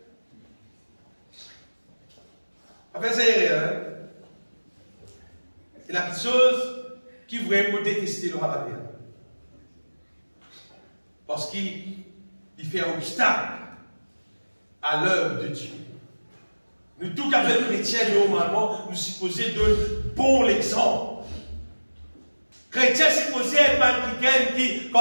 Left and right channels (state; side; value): inverted; both; correlation -1.00